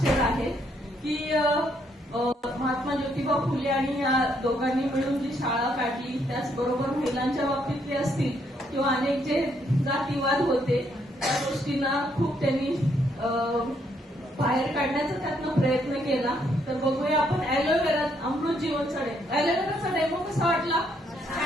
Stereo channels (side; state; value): both; normal; correlation 0.72